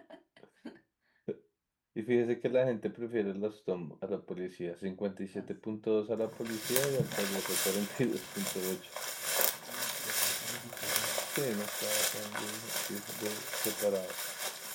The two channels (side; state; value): both; identical; correlation 1.00